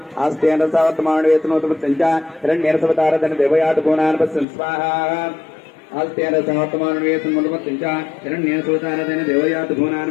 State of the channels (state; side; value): drops out; right; at 4.5 s